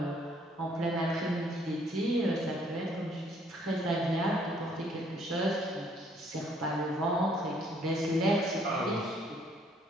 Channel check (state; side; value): normal; both; correlation 0.64